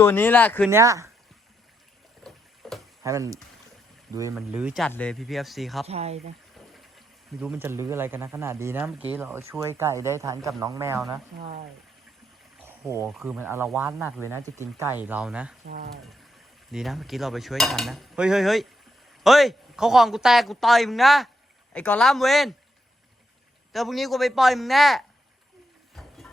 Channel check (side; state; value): both; normal; correlation 0.80